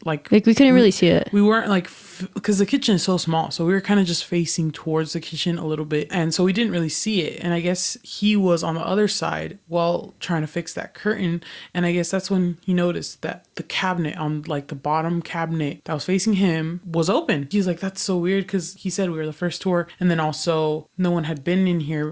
like like we couldn't really see it. we weren't like, because the kitchen is so small, so we were kind of just facing towards the kitchen a little bit, and so we didn't really see it. And I guess he was on the other side while trying to fix that curtain, and I guess that's when he noticed that the cabinet on like the bottom cabinet that was facing him was open. He's like, that's so weird, because he said we were the first tour, and then also no one had been in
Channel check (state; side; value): identical; both; correlation 1.00